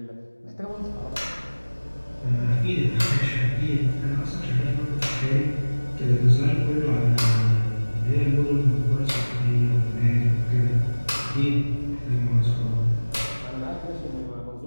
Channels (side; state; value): both; inverted; correlation -1.00